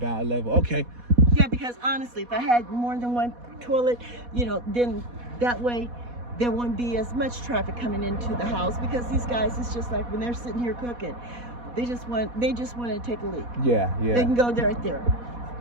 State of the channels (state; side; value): late; left; 4.1 ms